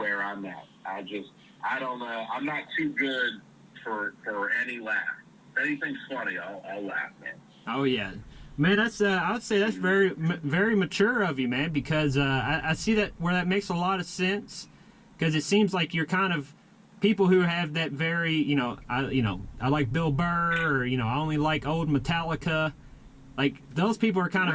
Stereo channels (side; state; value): both; identical; correlation 1.00